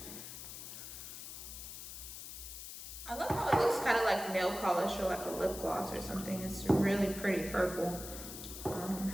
I love how it looks kind of like nail polish or like a lip gloss or something. It's really pretty purple.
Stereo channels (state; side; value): noise; left; hiss, 10 dB below the sound